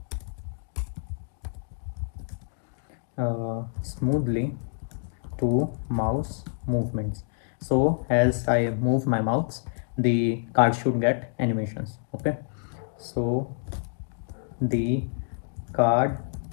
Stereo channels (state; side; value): silent; right; 60 dB below the other